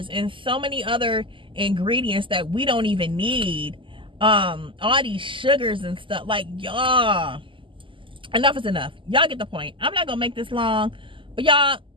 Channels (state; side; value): late; left; 0.25 ms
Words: and so many other ingredients that we don't even need. All these sugars and stuff. Like, y'all, enough is enough. Y'all get the point. I'm not gonna make this long, but y'all